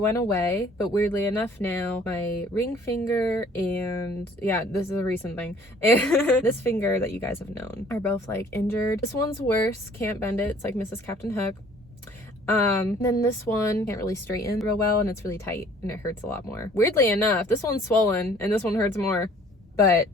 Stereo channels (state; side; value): normal; both; correlation 0.55